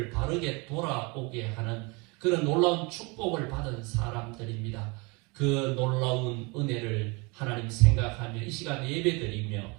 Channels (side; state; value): left; quieter; 28.5 dB